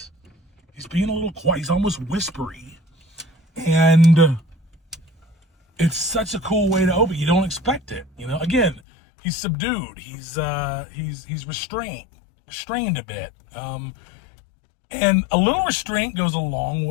He's being a little quiet. He's almost whispery. And it's such a cool way to open. You don't expect it. Again, he's subdued. He's restrained a bit. And a little restraint goes a long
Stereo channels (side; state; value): right; drops out; at 8.8 s